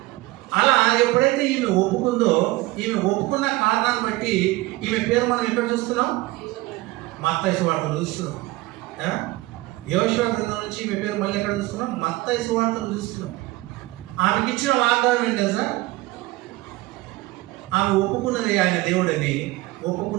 అలా ఎప్పుడైతే ఈమె ఒప్పుకుందో, ఈమె ఒప్పుకున్న కారణాన్ని బట్టి ఈమె పేరు మనం ఎక్కడ చూస్తున్నాం? మత్తయి సువార్తలు చూస్తున్నాం. యోషువ గ్రంథం నుంచి ఈమె పేరు మళ్ళీ ఎక్కడ చూస్తున్నాం? మత్తయి సువార్తలు చూస్తున్నాం. ఆమెకి ఇచ్చిన వాగ్దానం ఏంటి తెలుసా? ఆమె ఒప్పుకున్నది ఆయన దేవుడని.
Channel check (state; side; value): quieter; left; 19.5 dB